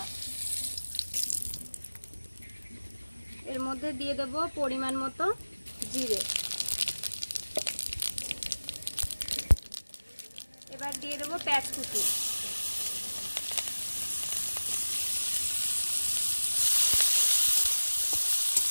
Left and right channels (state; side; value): inverted; both; correlation -1.00